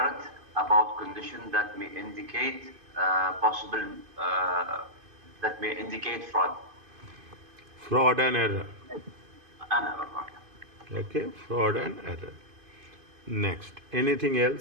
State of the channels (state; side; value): late; left; 2.5 ms